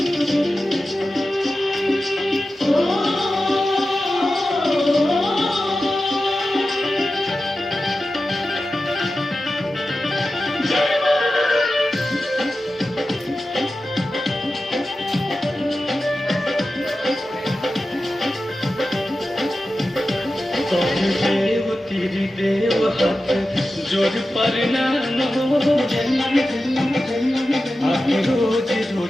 देव तेरी देव हाथ जोड़ प्रणाम आके रोज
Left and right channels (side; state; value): both; normal; correlation 0.93